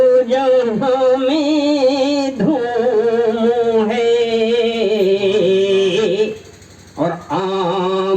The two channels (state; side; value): identical; both; correlation 1.00